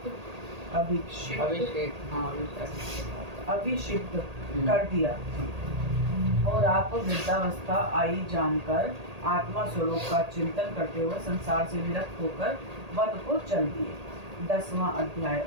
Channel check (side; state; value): left; late; 1.8 ms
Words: कर दिया और आप वृद्धावस्था आई जानकर आत्मा स्वरूप का चिंतन करते हुए संसार से विरक्त होकर वन को चल दिए। 10वां अध्याय